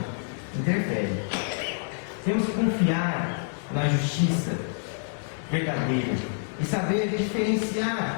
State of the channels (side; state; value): right; silent; 60 dB below the other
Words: Interfere. Temos que confiar na justiça verdadeira e saber